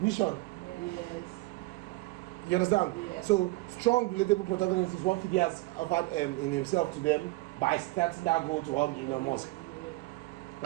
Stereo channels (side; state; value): left; quieter; 21.6 dB